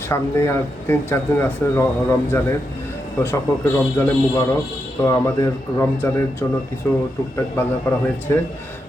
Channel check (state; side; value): normal; both; correlation 0.85